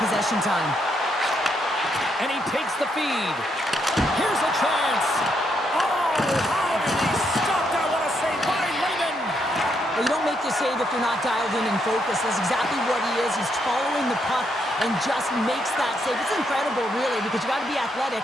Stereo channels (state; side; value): normal; both; correlation 0.77